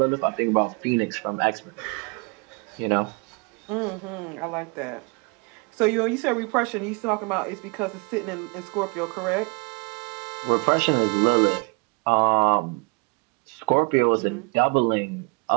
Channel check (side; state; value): left; quieter; 31.8 dB